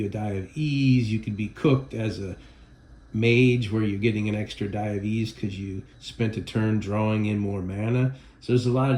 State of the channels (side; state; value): both; identical; correlation 1.00